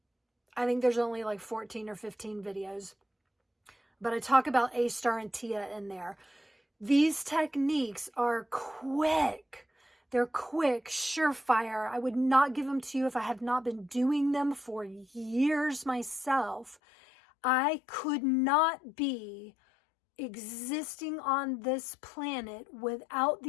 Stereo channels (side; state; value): right; drops out; at 16.8 s